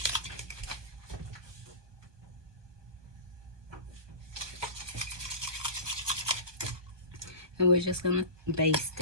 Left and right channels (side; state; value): left; late; 1.2 ms